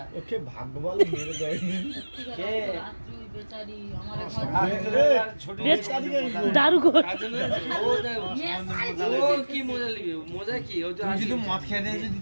ওকে ভাগ্য ভালো মেরে দেয়নি। কে? রাত্রি বেচারি আমার দারু কর। ও কি মজা লিবে মজা কি ও তো তুমি যদি আসি- মদ খেয়ে দিয়ে যদি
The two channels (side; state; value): both; inverted; correlation -1.00